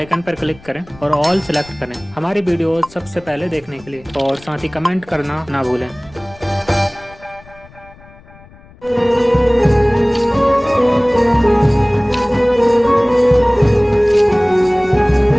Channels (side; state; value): left; noise; rumble, 24 dB below the sound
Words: पर क्लिक करें और ऑल सिलेक्ट करें हमारी वीडियो सबसे पहले देखने के लिए और साथ ही कमेंट करना ना भूलें।